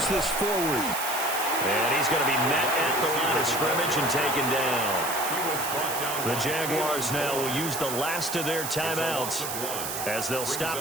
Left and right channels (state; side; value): noise; right; hiss, 5 dB below the sound